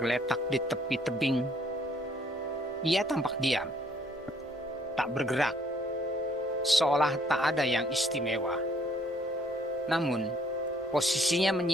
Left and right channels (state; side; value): normal; both; correlation 0.63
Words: di tepi tebing. Ia tampak diam, tak bergerak, seolah tak ada yang istimewa. Namun, posisinya